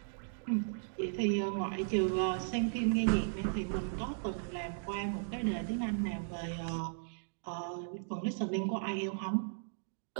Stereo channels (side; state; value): left; silent; digital silence